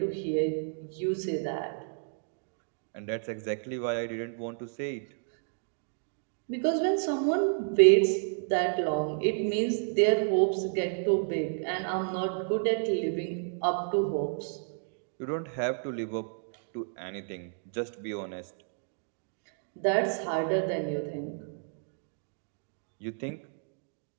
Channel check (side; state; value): left; silent; digital silence